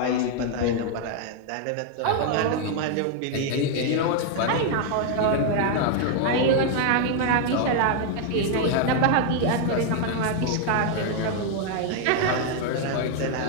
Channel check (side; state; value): both; different; correlation 0.00